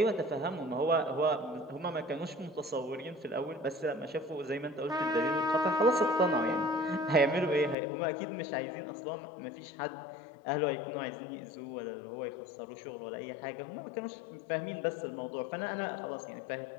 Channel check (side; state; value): right; drops out; at 7.8 s